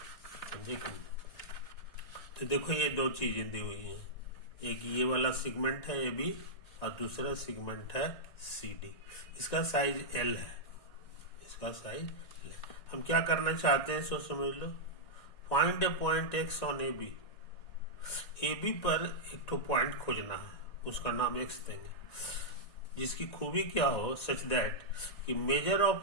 समझे कि नहीं। तो देखो, ये 2 चीजें दी हुई हैं, एक ये वाला सेगमेंट है ए बी और दूसरा सेगमेंट है सी डी। इसका साइज एल है, इसका साइज एल है। हम क्या करना चाहते हैं, सो समझ लो। Find a point X on A B. A B पर एक तो पॉइंट खोजना है, उसका नाम एक्स देंगे, जिसकी खूबी क्या हो, सच दैट कि मेजर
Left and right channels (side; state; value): right; late; 1.9 ms